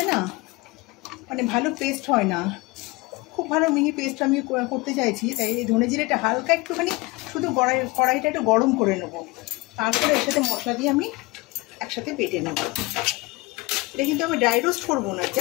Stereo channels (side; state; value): right; quieter; 23.4 dB